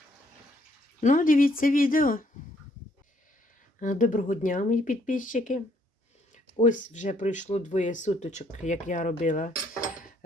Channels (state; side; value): normal; both; correlation 0.67